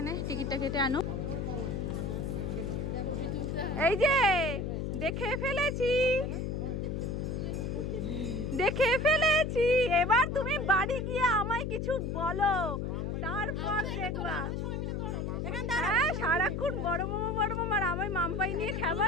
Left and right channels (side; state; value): left; noise; hum, 2 dB below the sound